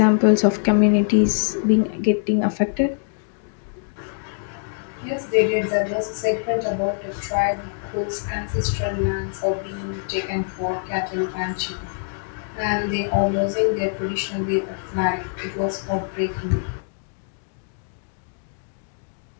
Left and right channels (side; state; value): right; silent; digital silence